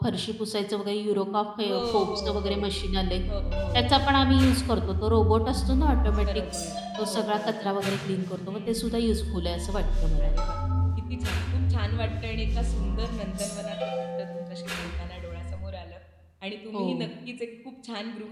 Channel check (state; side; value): identical; both; correlation 1.00